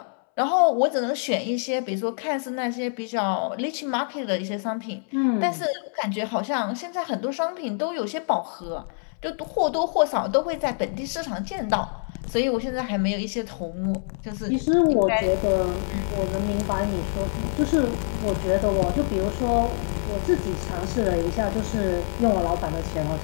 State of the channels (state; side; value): silent; right; 61 dB below the other